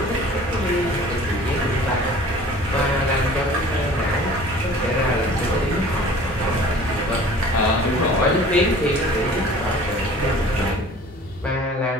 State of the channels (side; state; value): both; normal; correlation 0.47